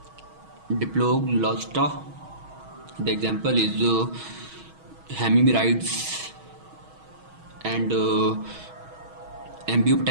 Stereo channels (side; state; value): left; late; 6.3 ms